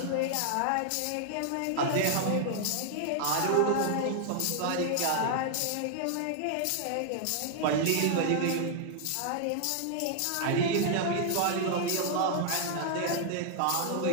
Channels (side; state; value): both; different; correlation 0.00